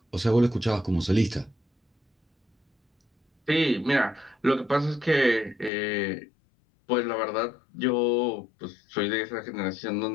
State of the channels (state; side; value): drops out; right; at 5.7 s